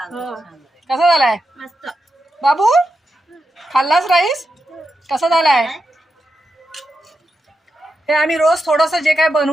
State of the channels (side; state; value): both; normal; correlation 0.87